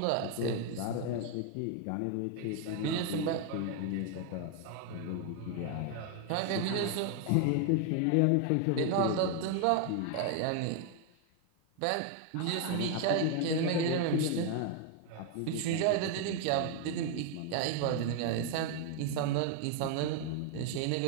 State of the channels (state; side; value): different; both; correlation 0.00